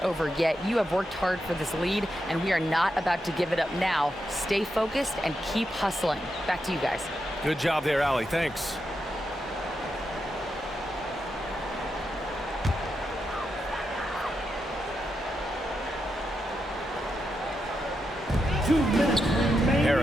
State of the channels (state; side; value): normal; both; correlation 0.85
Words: over yet. You have worked hard for this lead, and we are not about to give it up now. Stay focused and keep hustling." Back to you guys. Good job there, Allie. Thanks.